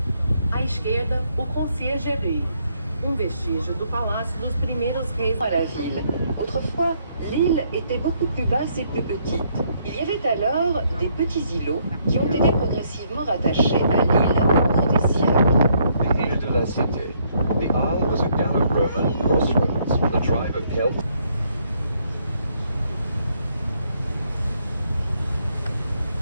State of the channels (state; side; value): inverted; both; correlation -0.71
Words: À esquerda, o conciergerie, vestígio do palácio dos primeiros reis. À la ville. Autrefois, l'île était beaucoup plus basse et plus petite. Il y avait alors des petits îlots qui ont été progressivement rattachés à l'île au cours des siècles. The Ile de la Cité. The isle was a Gallo-Roman crossroads. The tribe of Celts.